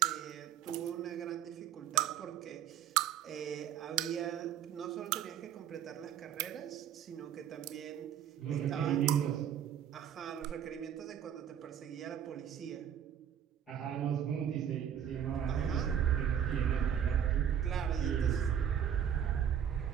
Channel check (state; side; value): quieter; left; 9.3 dB